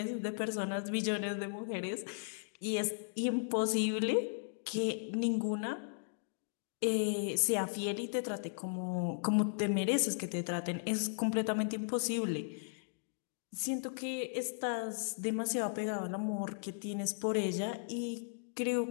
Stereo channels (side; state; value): right; silent; digital silence